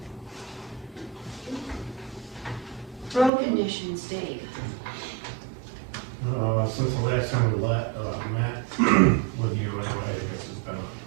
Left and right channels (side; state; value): left; drops out; at 3.3 s